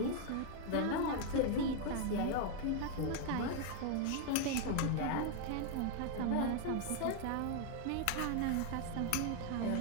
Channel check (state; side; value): different; both; correlation 0.00